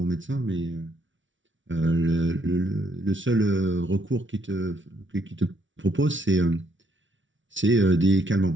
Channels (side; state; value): left; late; 0.56 ms